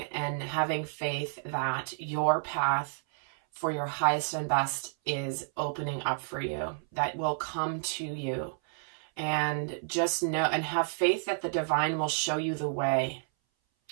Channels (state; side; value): silent; left; 57 dB below the other